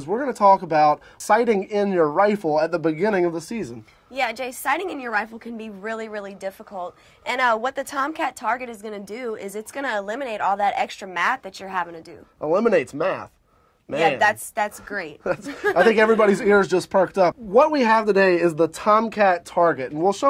we're going to talk about sighting in your rifle at the beginning of the season. Yeah, Jay, sighting in your rifle can be really, really difficult. And what the TomCat target is going to do is it's going to eliminate all that extra math that you're having to do. Eliminates math. Man. Yeah, that's great. I think everybody's ears just perked up. What we have today is the TomCat target, and we'll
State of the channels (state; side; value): identical; both; correlation 1.00